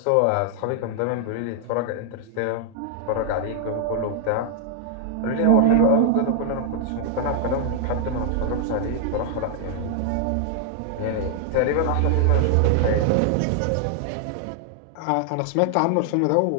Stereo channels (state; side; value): different; both; correlation 0.00